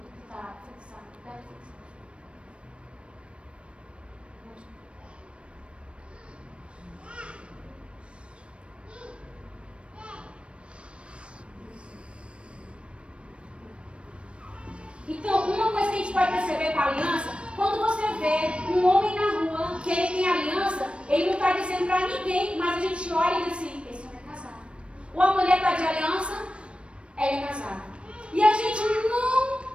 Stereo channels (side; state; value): left; late; 0.059 ms